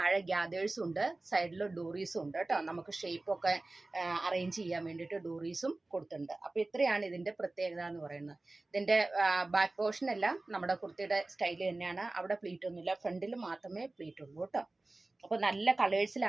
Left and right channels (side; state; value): left; quieter; 3.0 dB